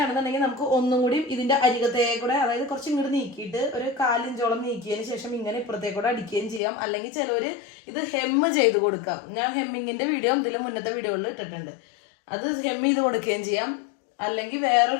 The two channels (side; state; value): right; drops out; at 6.6 s